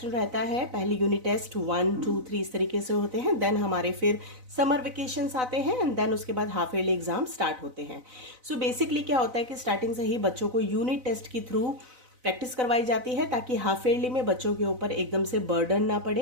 रहता है। पहली यूनिट टेस्ट 1, 2, 3 इस तरीके से होते हैं। देन हमारे फिर समर वेकेशंस आते हैं एंड देन उसके बाद हाफ ईयरली एग्जाम स्टार्ट होते हैं। सो बेसिकली क्या होता है कि स्टार्टिंग से ही बच्चों को यूनिट टेस्ट के थ्रू प्रैक्टिस करवाई जाती है ताकि हाफ ईयरली में बच्चों के ऊपर एकदम से बर्डन ना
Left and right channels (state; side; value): late; left; 4.0 ms